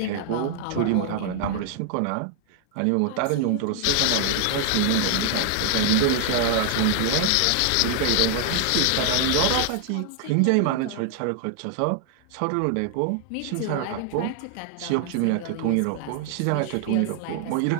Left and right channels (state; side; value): different; both; correlation 0.00